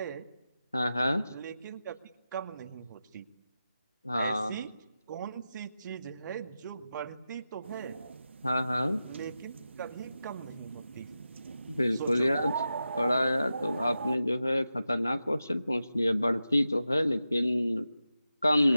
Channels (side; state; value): both; inverted; correlation -0.92